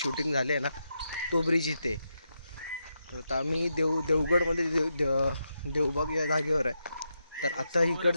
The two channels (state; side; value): inverted; both; correlation -0.85